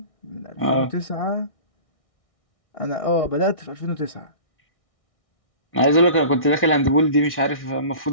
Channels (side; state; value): right; late; 1.6 ms